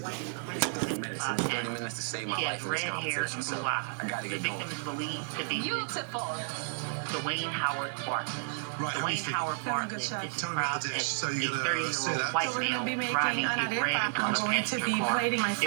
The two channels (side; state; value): left; silent; digital silence